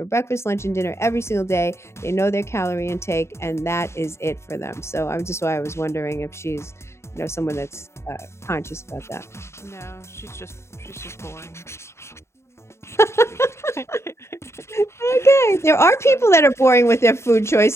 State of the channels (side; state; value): right; late; 0.13 ms